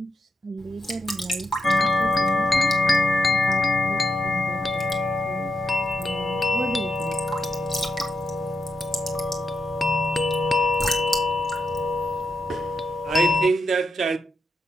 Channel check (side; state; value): both; normal; correlation 0.84